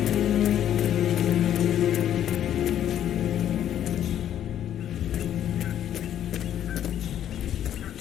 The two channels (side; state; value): right; quieter; 10.6 dB